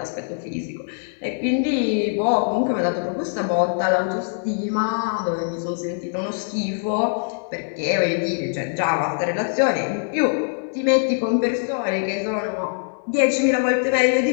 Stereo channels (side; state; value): right; silent; digital silence